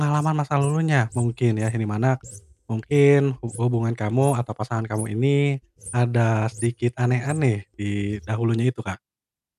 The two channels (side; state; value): both; identical; correlation 1.00